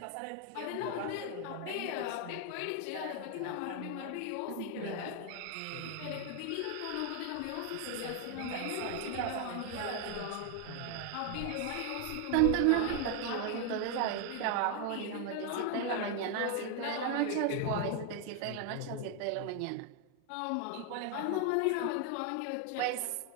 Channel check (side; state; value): both; different; correlation 0.01